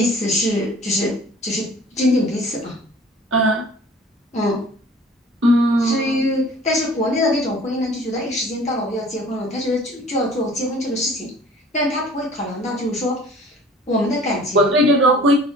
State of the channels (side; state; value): both; normal; correlation 0.49